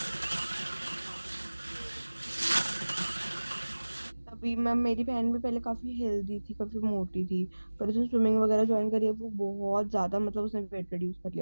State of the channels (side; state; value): both; inverted; correlation -1.00